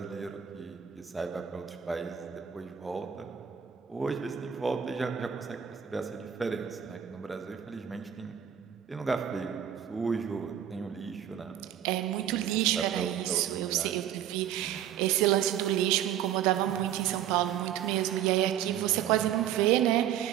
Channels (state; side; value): quieter; left; 9.9 dB